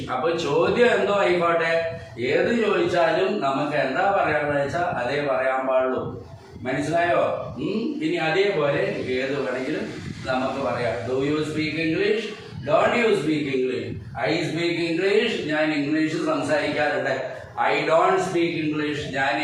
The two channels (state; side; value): identical; both; correlation 1.00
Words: അപ്പൊ ചോദ്യം എന്തോ ആയിക്കോട്ടെ, ഏത് ചോദിച്ചാലും നമുക്ക് എന്താ പറയാന്ന് വെച്ചാൽ അതേ പറയാൻ പാടുള്ളൂ. മനസ്സിലായോ? ഇനി അതേപോലെ ഏത് വേണമെങ്കിലും നമുക്ക് പറയാം. Do you speak English, don't you speak English. I speak English, ഞാൻ ഇംഗ്ലീഷ് സംസാരിക്കാറുണ്ട്. ഐ ഡോണ്ട് സ്പീക്ക് ഇംഗ്ലീഷ്, ഞാൻ